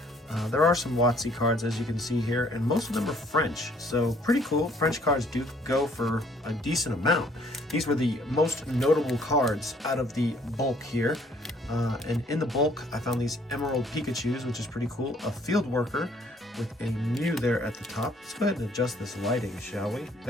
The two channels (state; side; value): normal; both; correlation 0.61